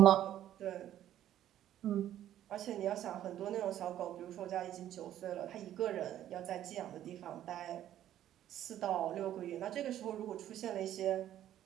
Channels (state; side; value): quieter; left; 11.8 dB